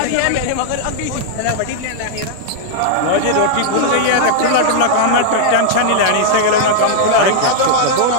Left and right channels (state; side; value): different; both; correlation -0.01